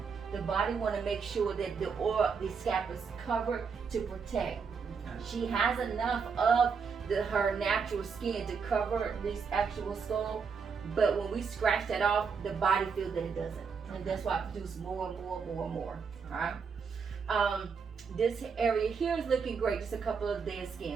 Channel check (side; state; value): left; quieter; 5.7 dB